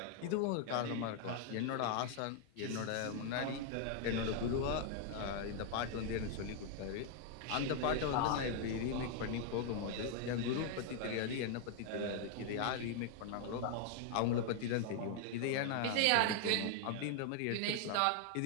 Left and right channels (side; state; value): both; different; correlation 0.00